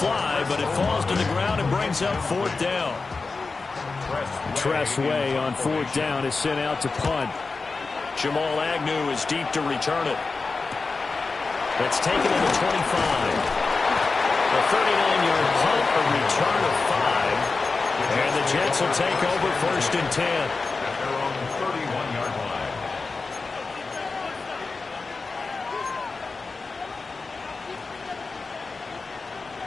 fly, but it falls to the ground and brings up fourth down. Tress Way on fourth down is sent out to punt. Jamal Agnew is deep to return it. That's taken to the 25. A 39-yard punt, a return of 5. And the Jets will take over first and 10. At their own 31-yard line.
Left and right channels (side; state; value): right; quieter; 4.1 dB